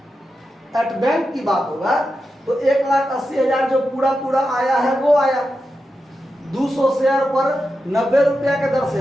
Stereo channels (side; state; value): both; normal; correlation 0.89